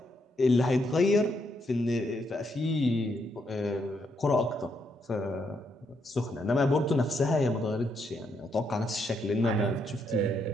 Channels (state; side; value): normal; both; correlation 0.77